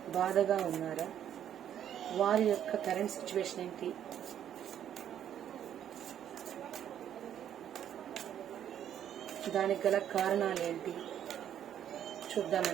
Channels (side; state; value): left; quieter; 10.1 dB